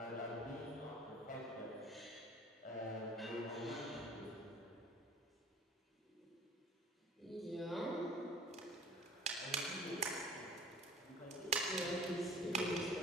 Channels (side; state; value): both; normal; correlation 0.48